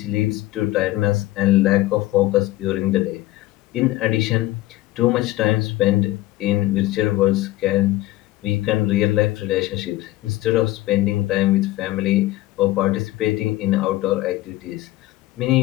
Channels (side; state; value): right; quieter; 16.8 dB